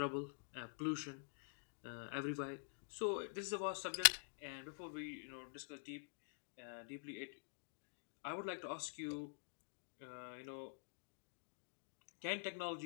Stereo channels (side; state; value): right; silent; digital silence